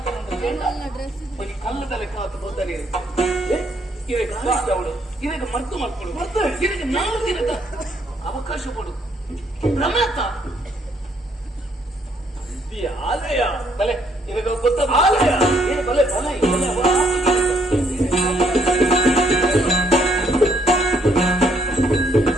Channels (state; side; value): normal; both; correlation 0.69